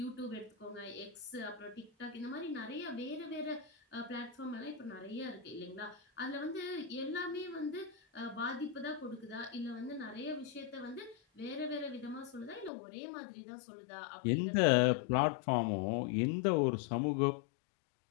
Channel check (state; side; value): drops out; right; at 12.7 s